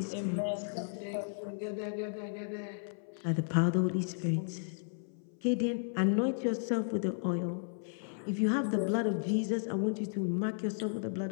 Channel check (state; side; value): silent; right; 55 dB below the other